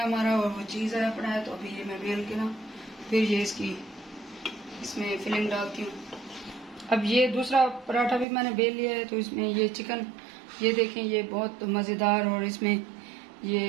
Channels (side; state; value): left; drops out; at 8.2 s